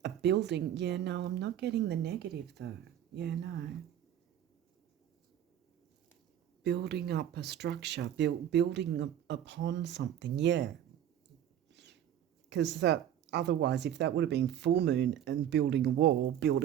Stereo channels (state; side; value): quieter; left; 10.5 dB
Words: A building. Yeah, no, I'm not getting the negative, though. Yeah, no. Building up a structure, building upon something, yeah. Because that, otherwise, if that would have been full moon and building a wall